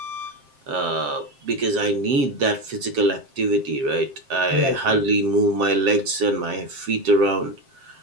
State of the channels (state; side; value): late; left; 7.5 ms